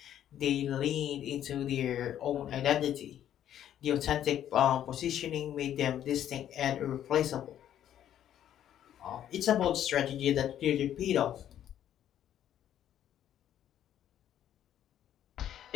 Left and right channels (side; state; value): right; quieter; 10.8 dB